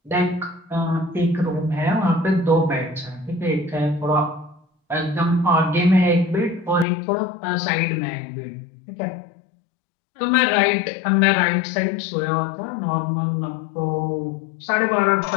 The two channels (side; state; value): right; drops out; at 6.9 s